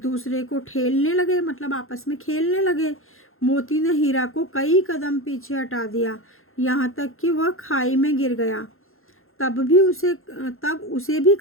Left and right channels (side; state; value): right; late; 0.61 ms